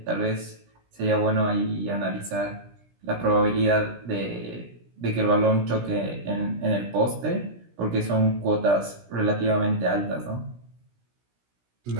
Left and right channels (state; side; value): late; left; 17 ms